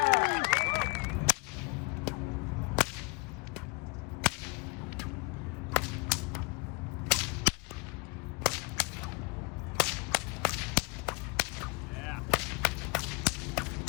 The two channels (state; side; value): quieter; right; 28.2 dB